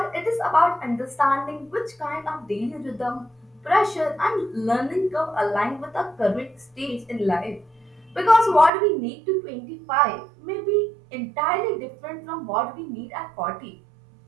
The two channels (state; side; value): drops out; left; at 8.7 s